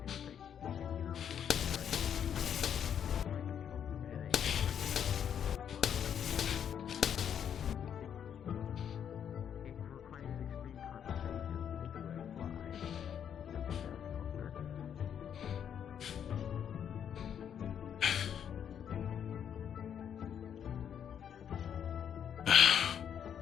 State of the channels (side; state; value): right; quieter; 8.7 dB